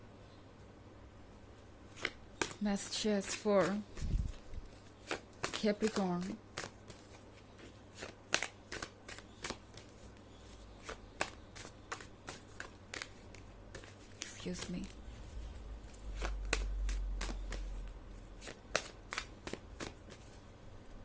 Messages for Capricorn. Excuse me.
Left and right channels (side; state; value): both; identical; correlation 1.00